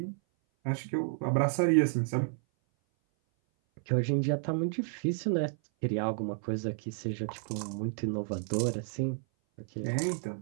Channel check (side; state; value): left; silent; 56 dB below the other